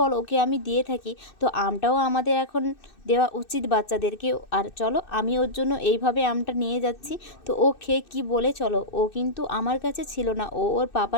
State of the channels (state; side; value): late; right; 2.6 ms